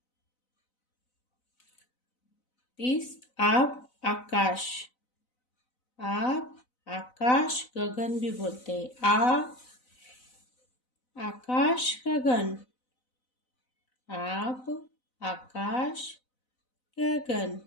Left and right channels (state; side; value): late; right; 4.0 ms